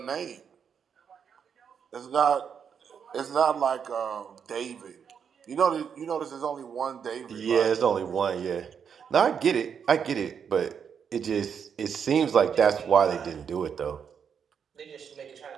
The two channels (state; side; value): quieter; left; 7.2 dB